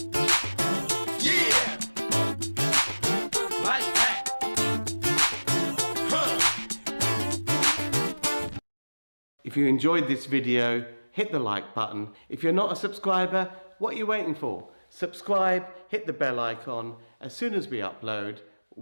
If you enjoyed this video, hit the like button. If you're not a subscriber, what are you waiting for? Subscribe, hit the bell icon. As soon as we upload,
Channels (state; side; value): inverted; both; correlation -1.00